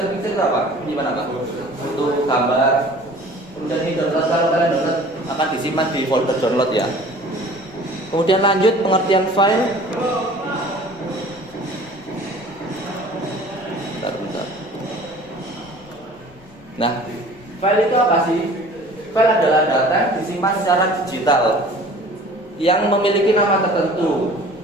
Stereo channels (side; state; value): left; noise; rumble, 28 dB below the sound